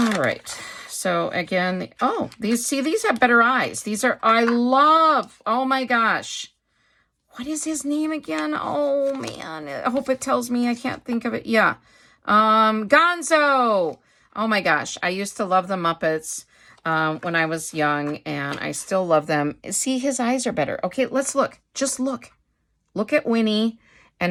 right. So again, these have better eyes. I love, oh my gosh. What is his name again? Oh man, I hope it tells me. I can't think of it. Yeah. Gonzo. Oh my gosh. I used to love the Muppets. when I was young, and I still love them. See, his eyes are better. Okay, let's look. Just look. Look at Winnie, and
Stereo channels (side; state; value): both; identical; correlation 1.00